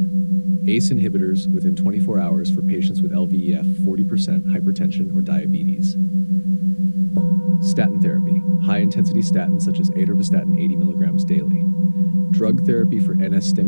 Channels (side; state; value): both; inverted; correlation -1.00